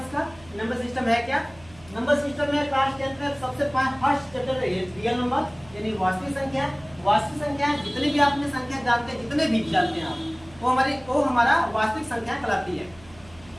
इसका। नंबर सिस्टम है क्या, नंबर सिस्टम में क्लास 10 में सबसे फर्स्ट चैप्टर है रियल नंबर यानी वास्तविक संख्या। वास्तविक संख्या जितनी भी आपने संख्या जानते हैं, जितने भी जानते हैं आप, वो हमारा वास्तविक संख्या कहलाती है।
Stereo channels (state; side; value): noise; right; hum, 23 dB below the sound